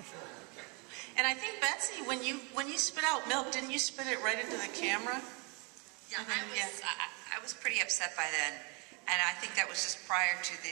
And I think, Betsy, when you spit out milk, didn't you spit it right into the camera? Yeah, I was pretty upset by then, and I think that was just prior to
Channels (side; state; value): left; quieter; 31.4 dB